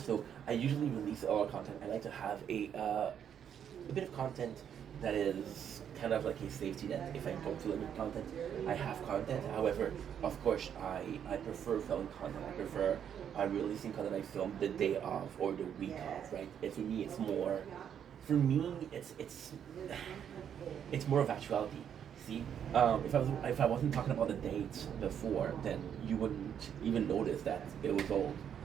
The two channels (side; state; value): left; quieter; 8.7 dB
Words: I usually release all our content. I like to have a bit of content that is kind of like a safety net. If I don't feel any content, I have content. However, of course, I prefer filming content. I prefer releasing content I filmed the day of or the week of, right? And for me, it's more. For me, it's more of actuality. See, if I wasn't talking about the dates before, then you wouldn't even notice that it was old,